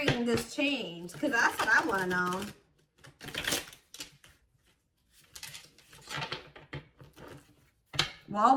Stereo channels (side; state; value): both; identical; correlation 1.00